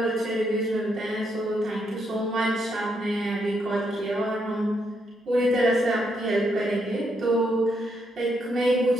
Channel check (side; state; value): both; normal; correlation 0.77